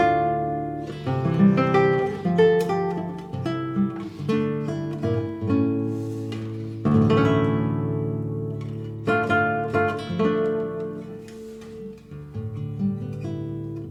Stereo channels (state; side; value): identical; both; correlation 1.00